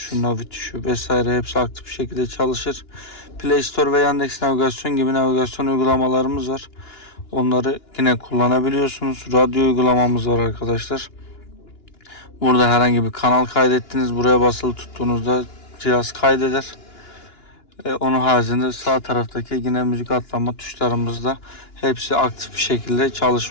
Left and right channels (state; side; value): late; right; 2.9 ms